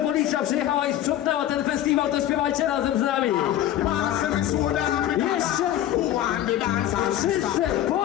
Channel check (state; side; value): quieter; right; 12.3 dB